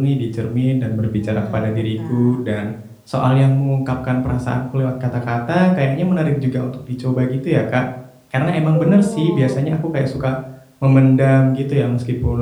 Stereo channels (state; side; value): identical; both; correlation 1.00